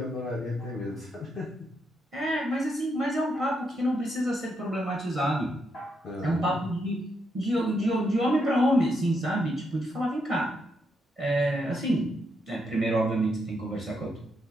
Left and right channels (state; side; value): normal; both; correlation 0.79